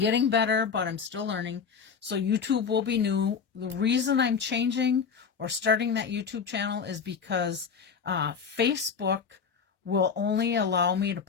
better, but I'm still learning. So YouTube will be new. The reason I'm changing or starting that YouTube channel is because Facebook will only allow me to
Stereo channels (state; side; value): quieter; right; 6.2 dB